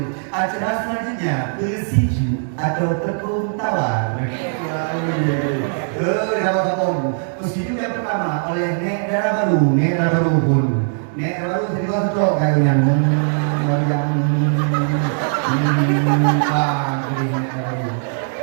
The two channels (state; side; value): silent; left; digital silence